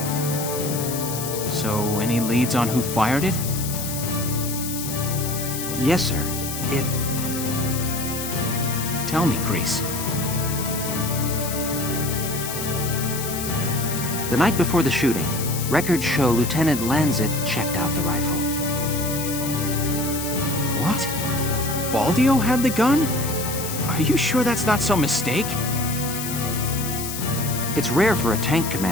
So, any leads on who fired it? Yes, sir. Tell me, Grease. The night before the shooting, records show Lieutenant Lancet checked out the rifle. What? Valdio had the gun? Are you sure that's not some mistake? It's rare for a tank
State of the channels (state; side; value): noise; left; hiss, 6 dB below the sound